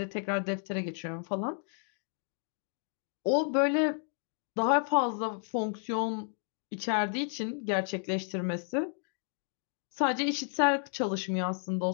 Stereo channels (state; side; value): silent; right; 56 dB below the other